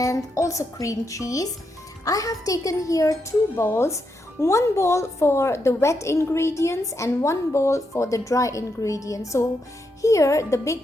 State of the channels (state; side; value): normal; both; correlation 0.82